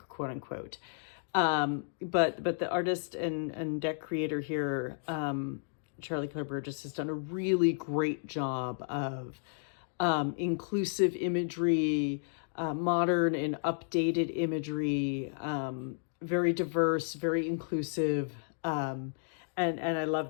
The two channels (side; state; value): right; silent; digital silence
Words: quote unquote. But the artist and deck creator here, Charlie Claire Burgess, has done a really great job of inclusive imagery, modern and updated imagery, very diverse, very inclusive, and I love